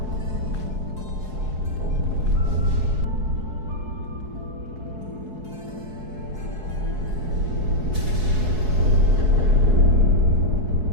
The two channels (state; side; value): late; left; 4.7 ms